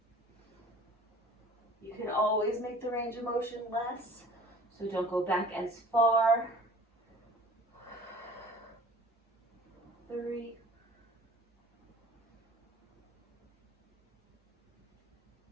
You can always make the range of motion less, so don't go back as far. 3.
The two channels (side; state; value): both; normal; correlation 0.46